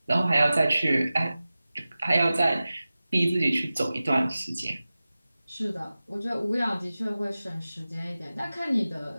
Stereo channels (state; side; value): inverted; both; correlation -0.96